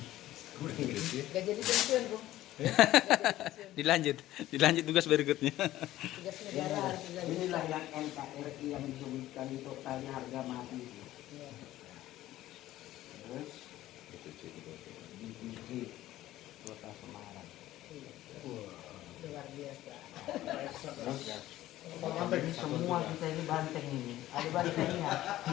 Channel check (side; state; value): right; quieter; 14.9 dB